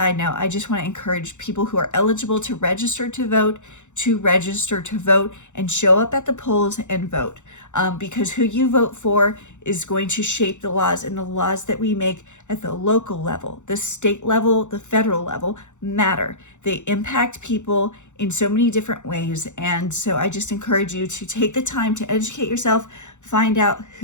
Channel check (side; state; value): right; late; 0.84 ms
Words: note, I just want to encourage people who are eligible to register to vote and show up at the polls and vote, because who you vote for is going to shape the laws, and the laws that we make at the local level, the state level, the federal level matter. They impact people in so many different ways. And so I just encourage you to take the time to educate yourself, find out